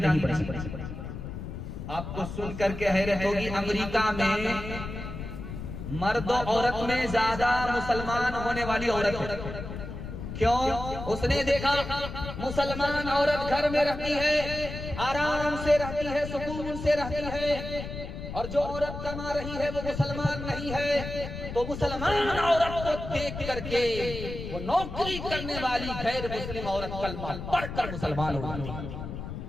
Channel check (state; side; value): noise; left; rumble, 8 dB below the sound